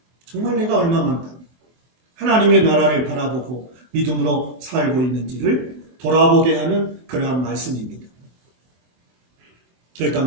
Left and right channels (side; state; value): left; late; 24 ms